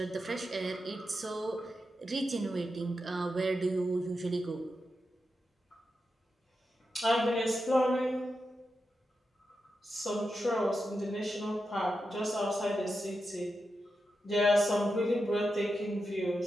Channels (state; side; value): normal; both; correlation 0.88